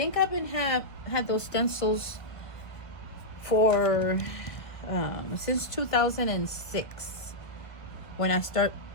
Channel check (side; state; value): right; late; 1.4 ms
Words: I've been had those stencils for since 2006. When I